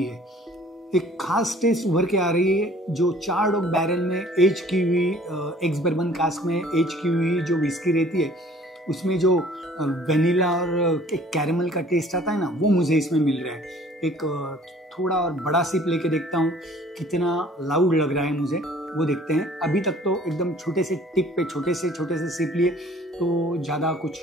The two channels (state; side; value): normal; both; correlation 0.54